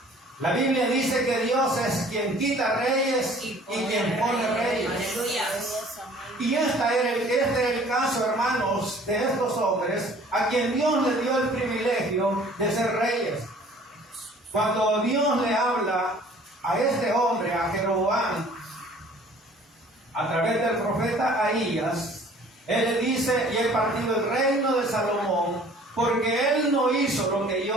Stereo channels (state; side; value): normal; both; correlation 0.52